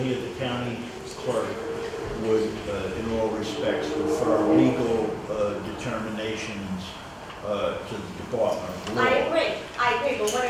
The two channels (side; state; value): both; identical; correlation 1.00